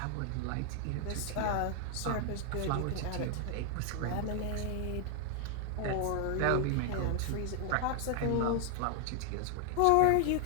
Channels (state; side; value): different; both; correlation 0.00